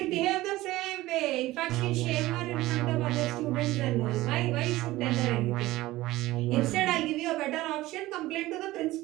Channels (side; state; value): left; quieter; 17.6 dB